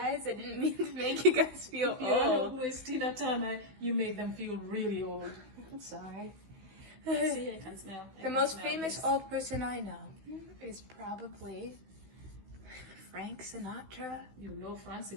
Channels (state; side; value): late; left; 16 ms